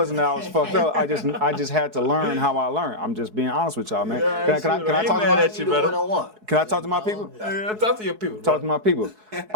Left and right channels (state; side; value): late; left; 4.7 ms